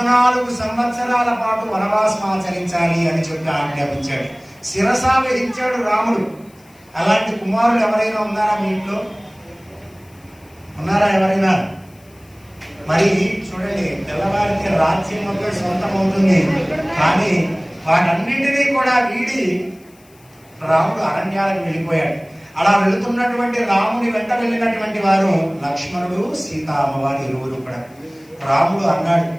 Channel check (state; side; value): noise; left; hiss, 30 dB below the sound